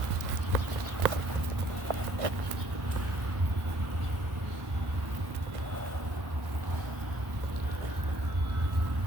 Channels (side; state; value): left; late; 1.1 ms